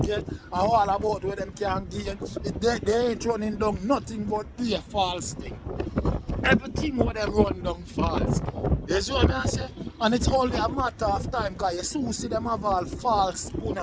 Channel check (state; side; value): identical; both; correlation 1.00